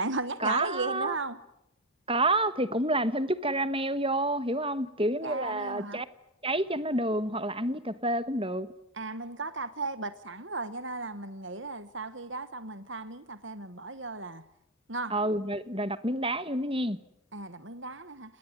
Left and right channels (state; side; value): normal; both; correlation 0.12